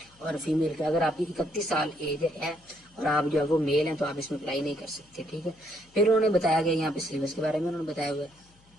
اور فیمیل کے اگر آپ کی 31 سال ایج ہے اور آپ جو ہے وہ میل ہیں تو آپ اس میں اپلائی نہیں کر سکتے، ٹھیک ہے۔ پھر انہوں نے بتایا گیا یہاں پہ سلیبس کے بارے میں انہوں نے بتایا ہوا ہے۔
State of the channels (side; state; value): left; noise; hum, 30 dB below the sound